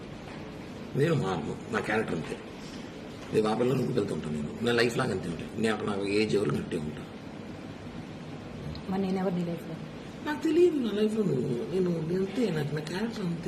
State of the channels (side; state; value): both; identical; correlation 1.00